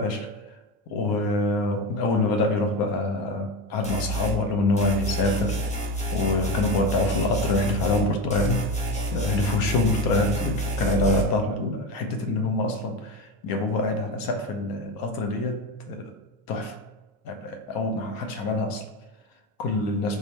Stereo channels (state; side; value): normal; both; correlation 0.21